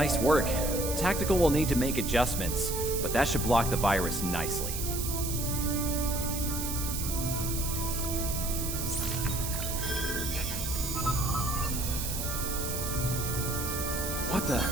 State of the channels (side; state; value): right; noise; hiss, 4 dB below the sound